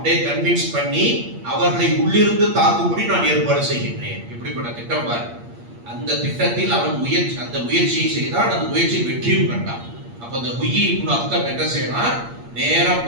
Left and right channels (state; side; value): late; left; 8.6 ms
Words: கன்வின்ஸ் பண்ணி அவர்களை உள்ளிருந்து தாக்கும்படி நான் ஏற்பாடு செய்கின்றேன். இப்படிப்பட்ட திட்டம் பாரு. அந்த திட்டத்தில் அவன் அந்த முயற்சியை செய்தான், அந்த முயற்சியில் வெற்றியும் கண்டான். அப்ப அந்த குய்யி இப்னு அக்தர் என்ன செய்யறான், நேரா